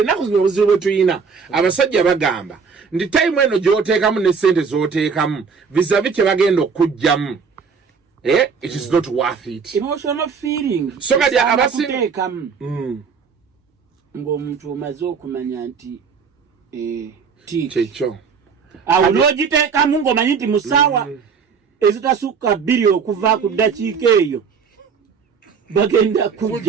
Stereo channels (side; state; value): left; quieter; 5.8 dB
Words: zino obuzibu bwe tuyina abasajja bagamba ndi time eno gy'oteekamu ne ssente z'oteekamu vizavi kye bagenda okujjamu it is not worth it. Emotional feeling so kati abateekamu ng'omuntu omaze okumanya nti kyekyo awo n'ogiteekamu ng'omanyi nti musaawa ezitasukka 2 okuva ku ddakiika eyo bagenda